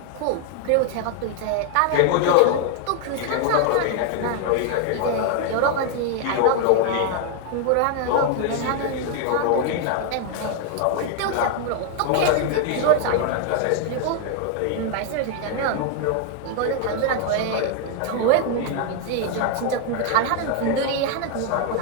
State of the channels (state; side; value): different; both; correlation 0.01